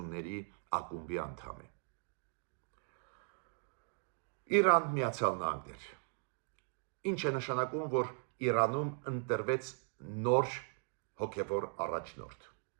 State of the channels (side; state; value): left; silent; 52 dB below the other